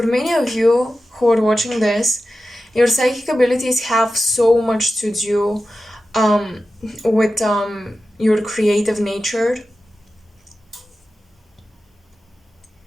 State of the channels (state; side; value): normal; both; correlation 0.93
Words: many of you who are watching this, your psychic abilities have so much to do with your creative nature.